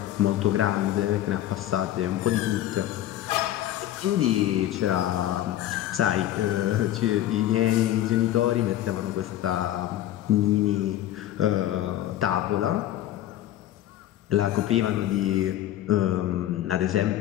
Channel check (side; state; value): right; quieter; 13.0 dB